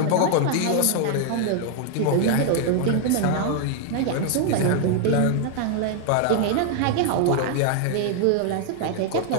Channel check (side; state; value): both; different; correlation 0.00